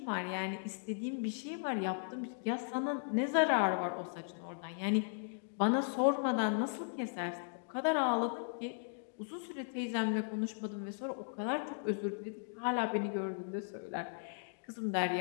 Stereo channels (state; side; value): silent; right; digital silence